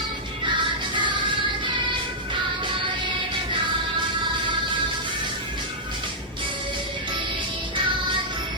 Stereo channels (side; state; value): both; normal; correlation -0.09